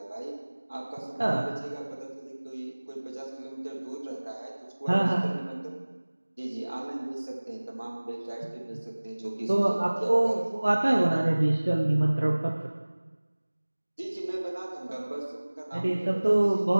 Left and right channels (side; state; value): both; inverted; correlation -1.00